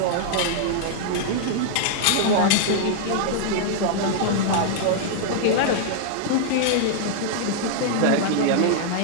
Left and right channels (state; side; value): different; both; correlation -0.01